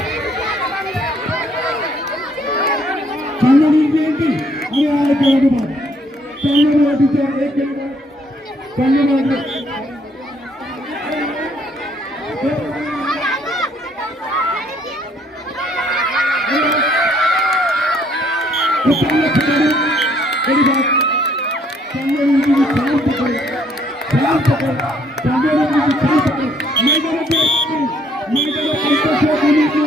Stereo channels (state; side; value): normal; both; correlation 0.65